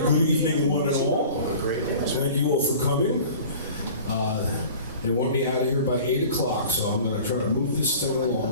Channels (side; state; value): both; inverted; correlation -0.43